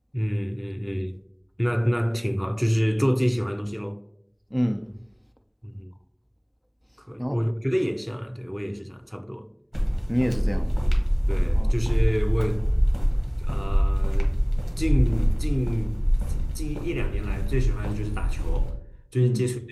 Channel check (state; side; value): identical; both; correlation 1.00